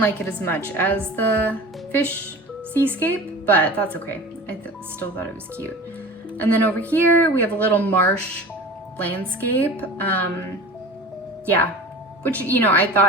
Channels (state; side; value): normal; both; correlation 0.36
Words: like it as much as the fish seascape, but that's okay. I still thought it was cute. And then over here, we have a little marsh landscape. Yeah, which, you know, I